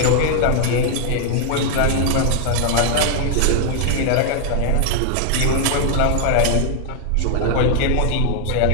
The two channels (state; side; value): different; both; correlation 0.00